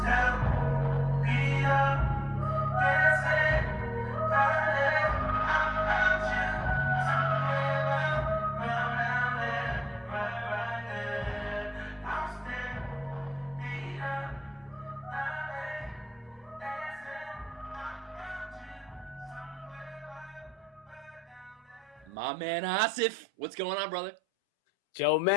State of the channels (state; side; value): normal; both; correlation 0.88